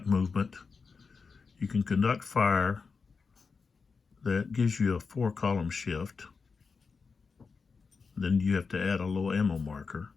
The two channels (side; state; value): right; quieter; 5.0 dB